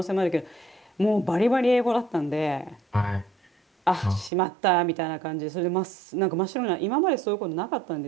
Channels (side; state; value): left; drops out; at 4.3 s